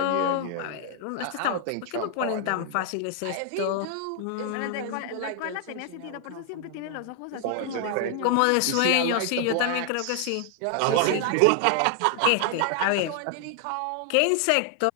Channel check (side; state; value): both; different; correlation 0.00